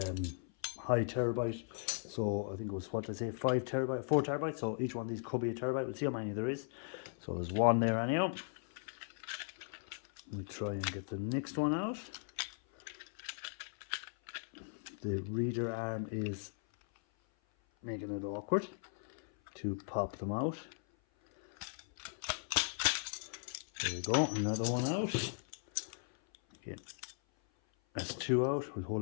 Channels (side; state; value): right; silent; 53 dB below the other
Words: high terabyte. So I think it was, what did I say, 4 terabytes. So each one of these could be a terabyte. We'll see how many there is. So there's one there anyhow. Let me try and get the next one out. The reader arm is making it awkward to pop them out. There we go, another one out. Okay. That's 2 out. We'll hold